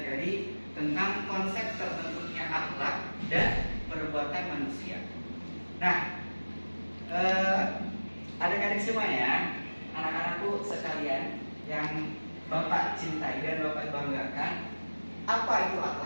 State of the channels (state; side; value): inverted; both; correlation -1.00